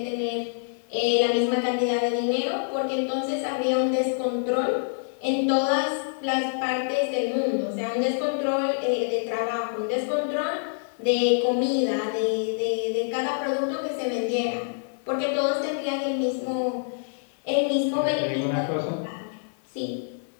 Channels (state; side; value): silent; right; digital silence